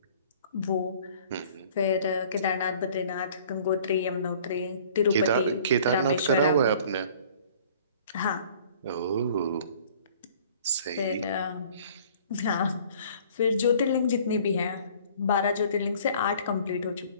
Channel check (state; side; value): inverted; both; correlation -0.52